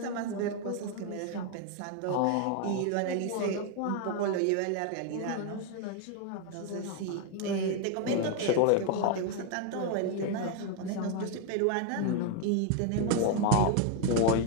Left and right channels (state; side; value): different; both; correlation 0.01